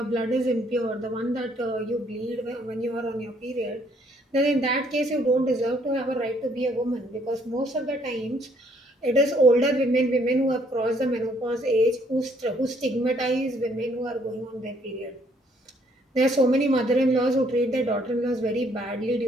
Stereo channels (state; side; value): normal; both; correlation 0.66